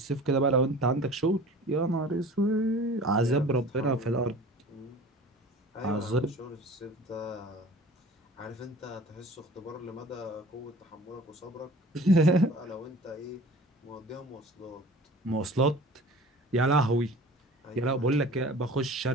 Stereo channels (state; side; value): normal; both; correlation 0.44